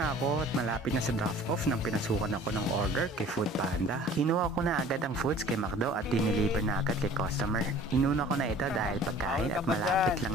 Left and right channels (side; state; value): both; normal; correlation 0.48